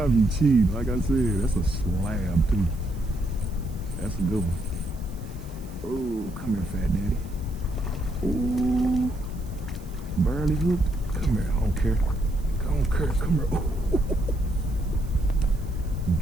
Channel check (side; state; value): right; noise; hiss, 25 dB below the sound